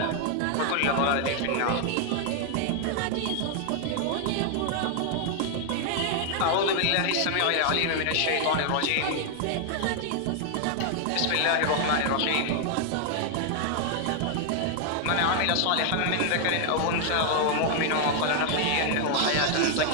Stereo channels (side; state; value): both; different; correlation 0.00